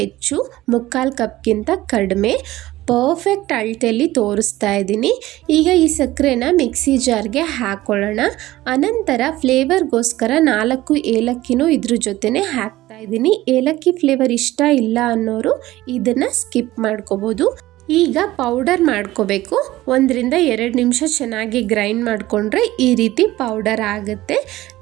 3/4 ಕಪ್ಗಿಂತ ಕಡಿಮೆ ಪರ್ಫೆಕ್ಟ್ ಅಳತೆಯಲ್ಲಿ ತೋರಿಸ್ತಾ ಇದ್ದೀನಿ. ಈಗ ಈ ಸಕ್ಕರೆನ ಮಿಕ್ಸಿ ಜಾರ್ಗೆ ಹಾಕ್ಕೊಳ್ಳೋಣ. ಅನಂತರ ಫ್ಲೇವರ್ಗೋಸ್ಕರ 4 ಏಲಕ್ಕಿನೂ ಇದ್ರ ಜೊತೆನೇ ಹಾಕ್ತಾ ಇದ್ದೀನಿ. ಏಲಕ್ಕಿ ಫ್ಲೇವರ್ ಇಷ್ಟ ಇಲ್ಲ ಅನ್ನೋರು ಇದನ್ನು ಸ್ಕಿಪ್ ಮಾಡ್ಕೋಬೋದು. ಈಗ ಪೌಡರ್ ಮಾಡ್ಕೋಬೇಕು. 1 ರಿಂದ 2 ನಿಮಿಷ ಚೆನ್ನಾಗಿ ಗ್ರೈಂಡ್ ಮಾಡಿಕೊಂಡ್ರೆ ಈ ರೀತಿ ಪೌಡರ್ ಆಗುತ್ತೆ.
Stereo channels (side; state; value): left; quieter; 16.6 dB